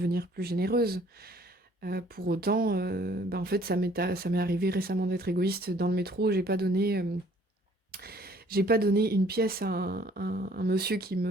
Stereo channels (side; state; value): both; normal; correlation 0.58